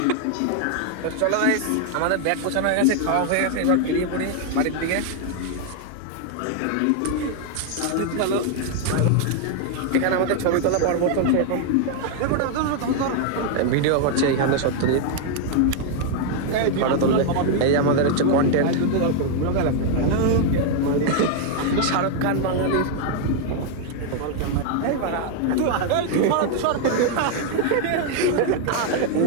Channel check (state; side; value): different; both; correlation 0.00